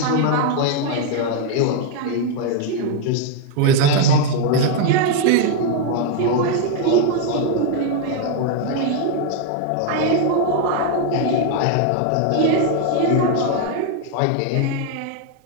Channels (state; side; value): different; both; correlation 0.00